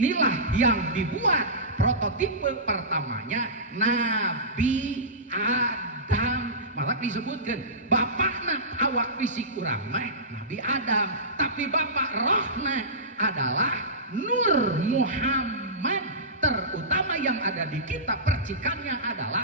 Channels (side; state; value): both; normal; correlation -0.19